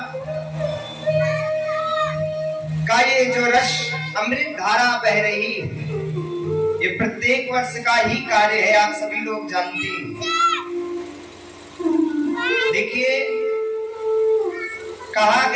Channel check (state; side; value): identical; both; correlation 1.00